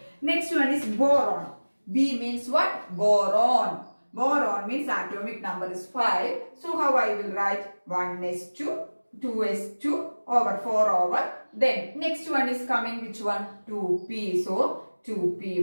Next one is boron. B means what? Boron. Boron means atomic number is 5. So how I will write? 1s2, 2s2 over 4 over. Then next one is coming which one? 2p. So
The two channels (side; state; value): both; inverted; correlation -1.00